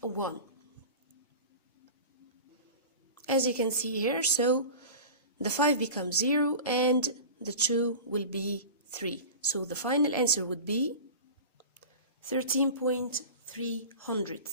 a 1. As you can see here, so the 5 becomes 0 and the 2 will be 3. So the final answer would be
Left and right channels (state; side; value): inverted; both; correlation -0.35